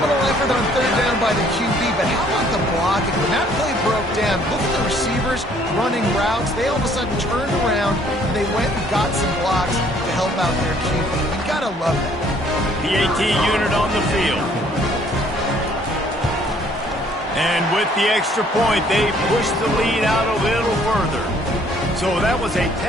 effort on third down by the QB, but how about the blocking? When that play broke down, look at the receivers running routes. They all of a sudden turned around, and they went and got some blocks to help out their QB. You gotta love that. PAT unit on the field. And with the extra point, they pushed the lead out a little further. So that was a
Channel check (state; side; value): normal; both; correlation 0.61